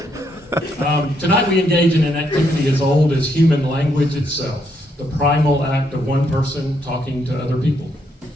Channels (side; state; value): both; normal; correlation 0.75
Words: Tonight we engage in an activity as old as human language itself, the primal act of one person talking to other people.